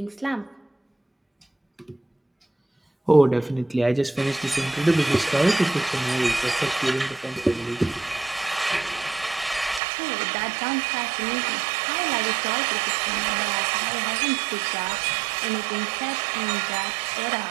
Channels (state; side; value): drops out; left; at 9.8 s